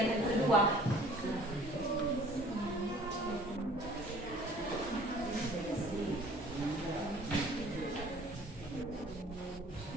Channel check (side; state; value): both; normal; correlation 0.51